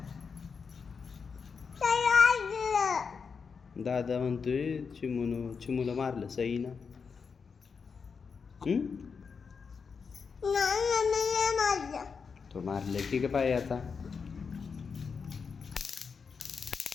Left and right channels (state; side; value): quieter; right; 5.6 dB